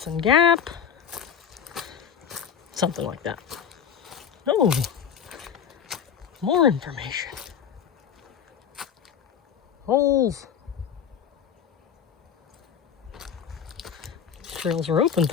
Gap. Something like that. Oh, more information. Holes. Trails are open,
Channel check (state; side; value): quieter; right; 8.0 dB